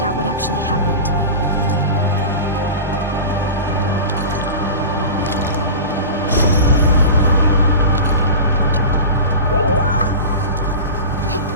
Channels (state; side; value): inverted; both; correlation -0.31